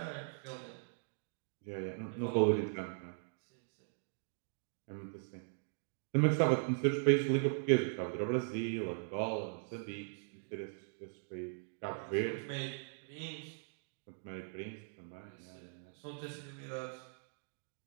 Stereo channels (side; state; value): left; silent; digital silence